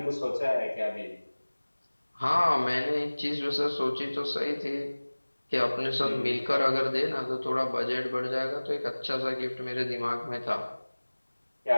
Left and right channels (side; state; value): both; inverted; correlation -1.00